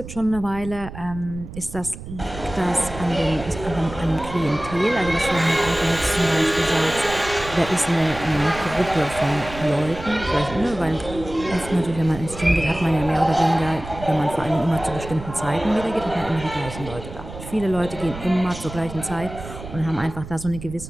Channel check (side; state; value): right; noise; rumble, 12 dB below the sound